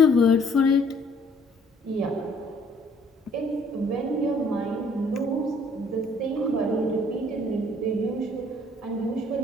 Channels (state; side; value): normal; both; correlation 0.60